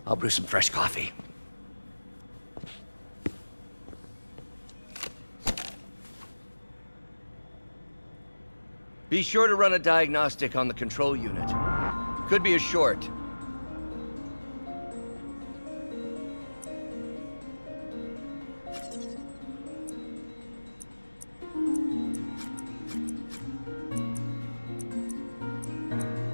I'll brew some fresh coffee. Be sure to run a diagnostic on the control unit. Could be a short.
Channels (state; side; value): inverted; both; correlation -1.00